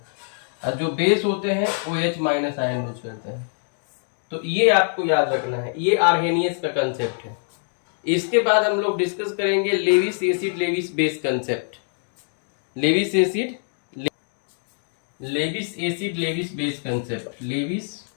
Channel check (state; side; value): silent; right; digital silence